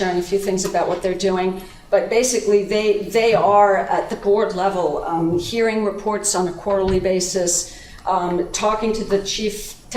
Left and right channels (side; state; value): both; identical; correlation 1.00